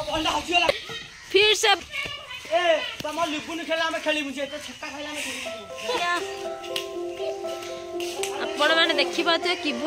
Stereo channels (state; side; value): identical; both; correlation 1.00